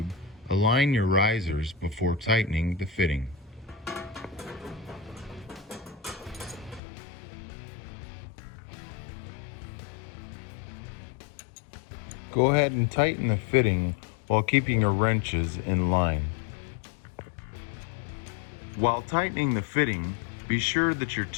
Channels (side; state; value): right; drops out; at 6.8 s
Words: align your risers before tightening the fitting. Go ahead and tighten the fitting while keeping your wrenches in line. While tightening the fitting, be sure that your